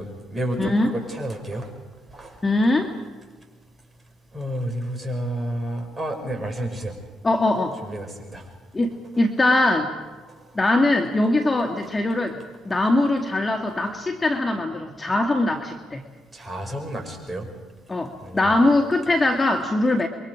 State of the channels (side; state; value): both; normal; correlation 0.88